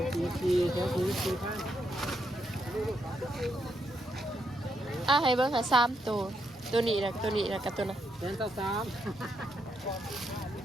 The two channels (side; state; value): both; normal; correlation 0.79